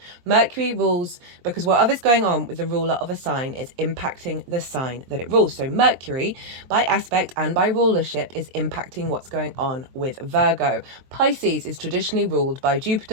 Mercury rules because whatever's going on with the ruler of a sign is impacting the sign that it rules. So Mercury, by aspect and by rulership, is impacting what's going on with Virgo. Pisces is traditionally ruled by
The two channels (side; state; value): left; late; 23 ms